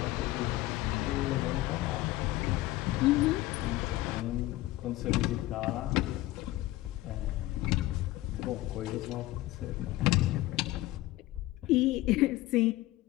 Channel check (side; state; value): right; quieter; 17.3 dB